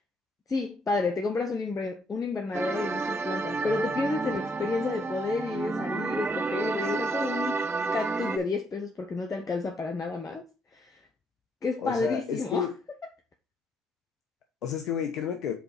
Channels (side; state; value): both; normal; correlation 0.72